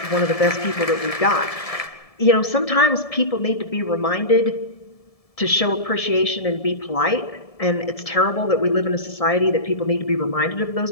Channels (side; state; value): right; late; 1.7 ms